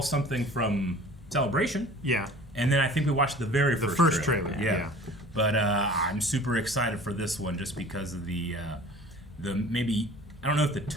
something from Celebration. Yeah. And then I think we watched the first trailer. Yeah. But I'm super excited for this one just because of the maybe, I don't know if the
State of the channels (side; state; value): both; normal; correlation 0.45